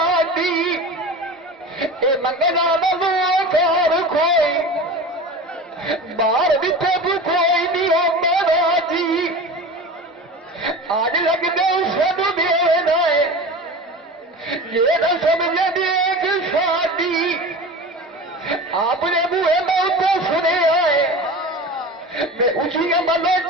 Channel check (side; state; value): both; normal; correlation 0.33